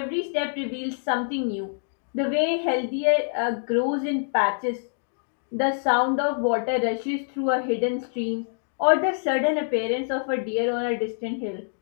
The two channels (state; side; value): silent; right; digital silence